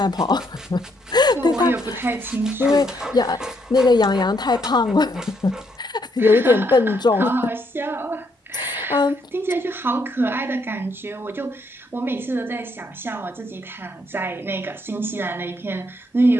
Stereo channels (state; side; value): normal; both; correlation 0.74